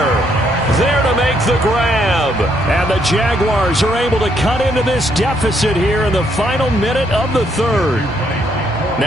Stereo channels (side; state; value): both; normal; correlation 0.72